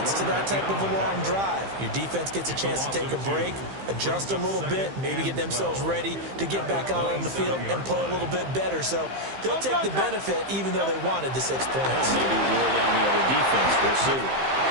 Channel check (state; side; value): late; left; 15 ms